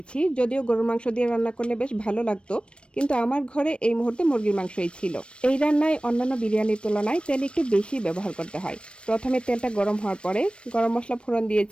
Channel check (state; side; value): late; right; 0.058 ms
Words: যদিও গরুর মাংস দিয়ে রান্না করলে বেশ ভালো লাগতো, কিন্তু আমার ঘরে এই মুহূর্তে মুরগির মাংসই ছিল। এই রান্নায় অন্যান্য বিরিয়ানির তুলনায় তেল একটু বেশি ব্যবহার করতে হয়। প্রথমে তেলটা গরম হওয়ার পরে গরম মশলা ফোড়ন